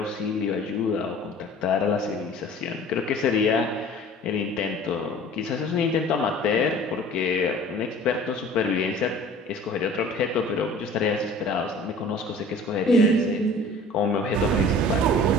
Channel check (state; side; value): normal; both; correlation 0.46